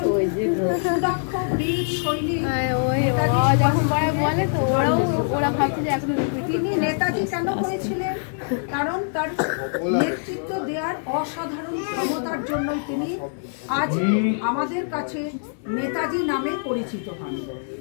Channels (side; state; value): right; silent; 62 dB below the other